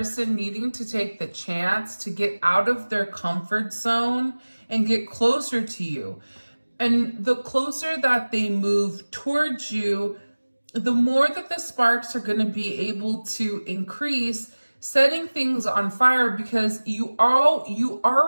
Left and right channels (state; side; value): inverted; both; correlation -1.00